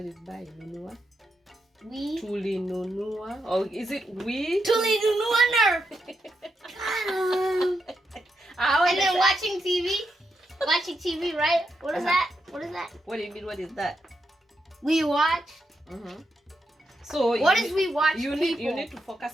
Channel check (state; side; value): normal; both; correlation 0.83